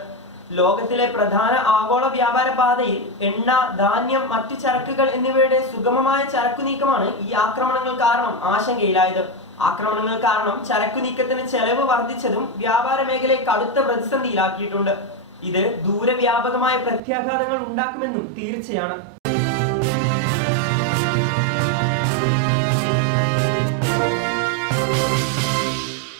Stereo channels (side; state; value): left; drops out; at 17.0 s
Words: ലോകത്തിലെ പ്രധാന ആഗോള വ്യാപാര പാതയിൽ എണ്ണ, ധാന്യം, മറ്റു ചരക്കുകൾ എന്നിവയുടെ സുഗമമായ ചരക്കു നീക്കമാണ് ഈ ആക്രമണങ്ങൾ കാരണം ആശങ്കയിലായത്. ആക്രമണങ്ങൾ കാരണം ചരക്കു നീക്കത്തിന് ചെലവ് വർദ്ധിച്ചതും വ്യാപാര മേഖലയെ കടുത്ത പ്രതിസന്ധിയിലാക്കിയിട്ടുണ്ട്. ഇത് ദൂരവ്യാപകമായ പ്രത്യാഘാതങ്ങൾ ഉണ്ടാക്കുമെന്നും തീർച്ചയാണ്.